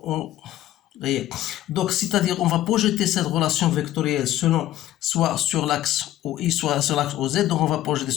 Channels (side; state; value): right; quieter; 13.7 dB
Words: donc, c'est-à-dire, on va projeter cette relation vectorielle selon soit sur l'axe OI, soit sur l'axe OZ. Donc, on va projeter